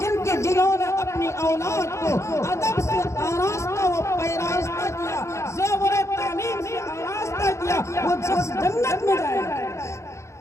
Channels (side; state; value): right; late; 0.14 ms